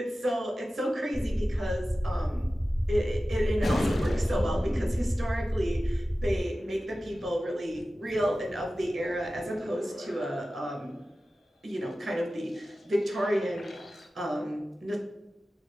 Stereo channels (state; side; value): normal; both; correlation 0.95